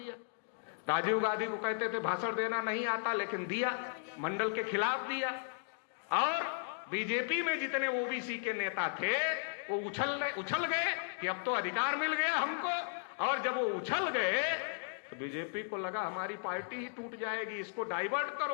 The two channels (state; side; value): silent; right; digital silence